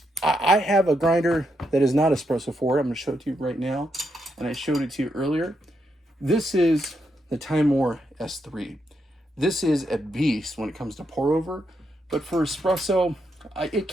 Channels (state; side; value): normal; both; correlation 0.81